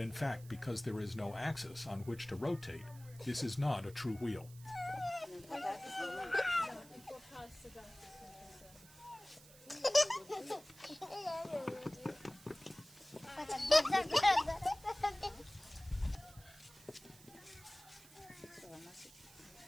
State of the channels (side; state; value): right; noise; hiss, 21 dB below the sound